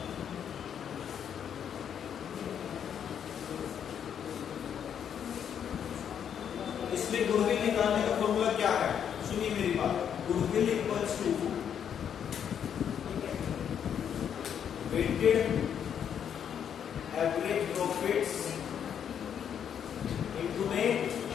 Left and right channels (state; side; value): quieter; right; 8.5 dB